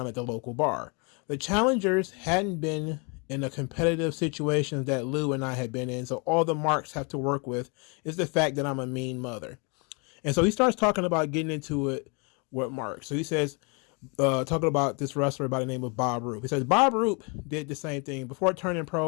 at the local bar. The challengers hadn't been in the competitive situations that Lou and I had been in, so all the marks have to work with is the fact that I'm a mean mother. And so he starts talking about getting into it with Mark. So he says, talking about this wrestler by the name of Bob Roop. He says, Bob Roop did the same thing. Before turning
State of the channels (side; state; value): right; quieter; 33.2 dB